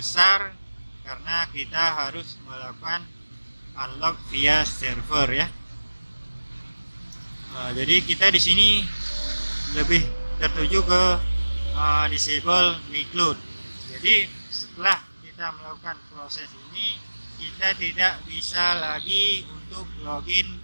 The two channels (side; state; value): both; inverted; correlation -1.00